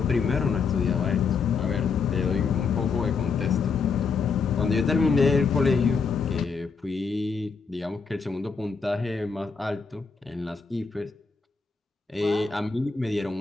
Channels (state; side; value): quieter; right; 5.2 dB